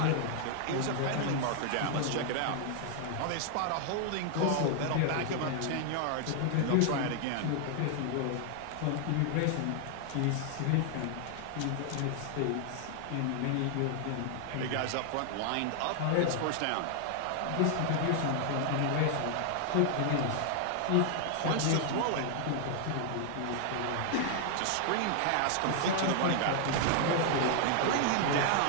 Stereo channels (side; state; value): both; different; correlation 0.00